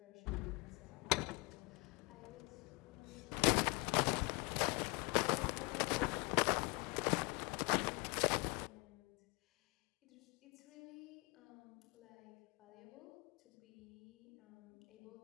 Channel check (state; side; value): quieter; right; 29.4 dB